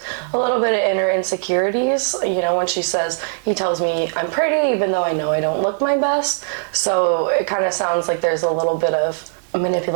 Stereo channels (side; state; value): left; silent; digital silence